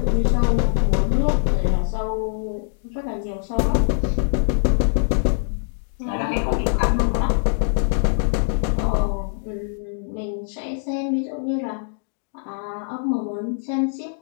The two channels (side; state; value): right; silent; digital silence